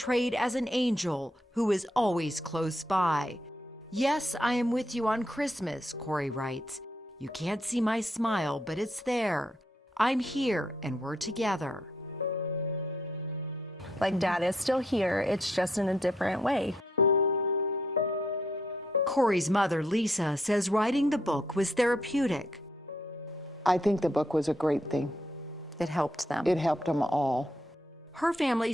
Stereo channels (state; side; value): normal; both; correlation 0.74